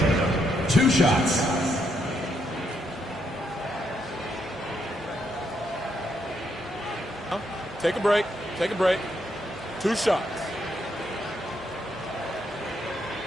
2 shots. Take a break. Take a break. 2 shots.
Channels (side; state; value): both; normal; correlation 0.77